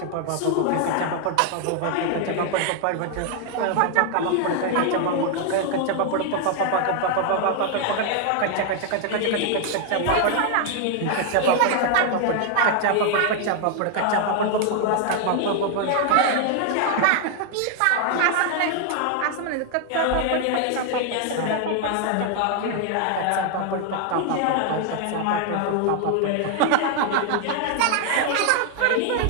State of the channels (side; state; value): both; different; correlation 0.00